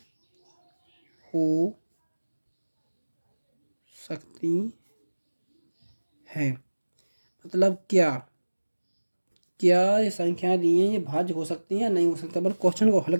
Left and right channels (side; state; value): both; inverted; correlation -1.00